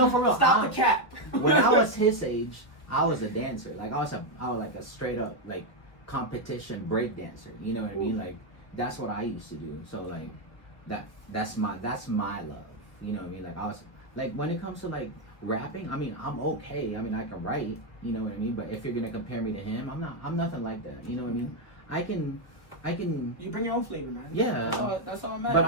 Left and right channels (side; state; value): right; late; 1.3 ms